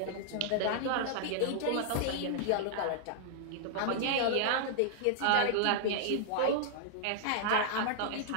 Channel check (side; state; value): both; different; correlation -0.01